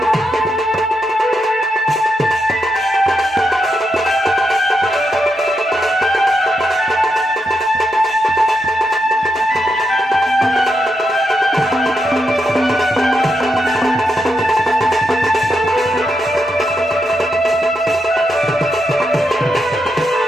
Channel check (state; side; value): normal; both; correlation 0.83